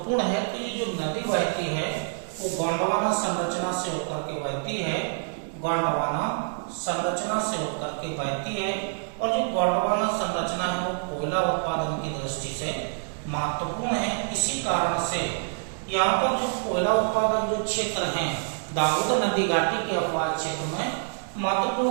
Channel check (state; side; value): silent; left; digital silence